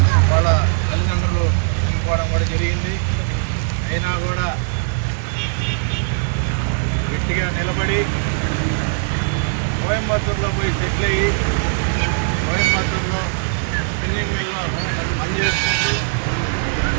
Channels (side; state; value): left; silent; 66 dB below the other